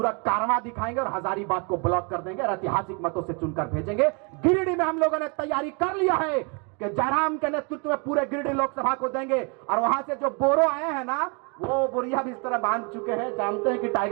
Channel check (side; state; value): left; quieter; 33.9 dB